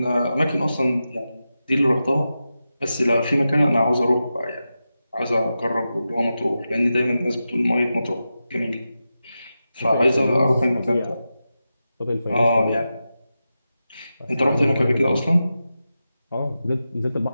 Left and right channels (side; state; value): both; inverted; correlation -0.91